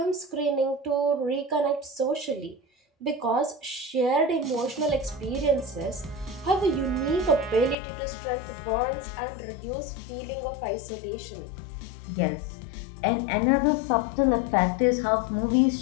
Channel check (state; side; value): drops out; right; at 7.8 s